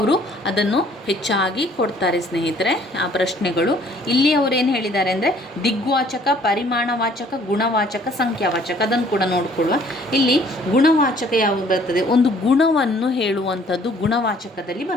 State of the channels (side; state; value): both; normal; correlation 0.58